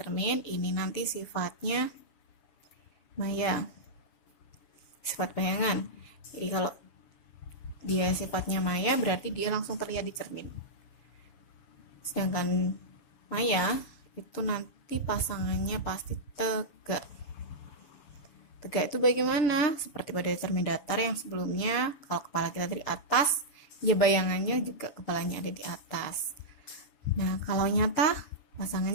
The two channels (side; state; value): right; late; 7.1 ms